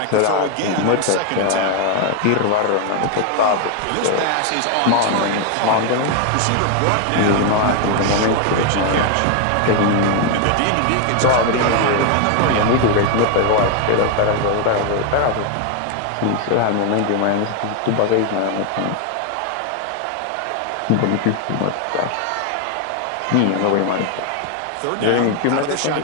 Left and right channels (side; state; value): both; different; correlation 0.01